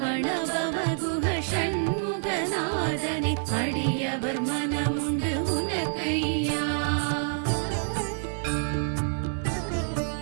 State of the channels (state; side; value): silent; left; digital silence